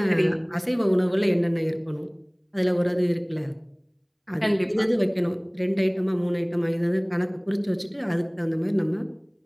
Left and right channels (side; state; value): both; identical; correlation 1.00